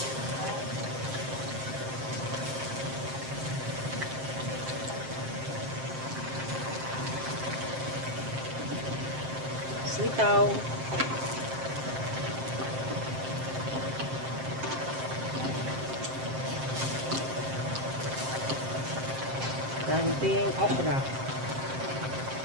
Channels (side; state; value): left; late; 7.6 ms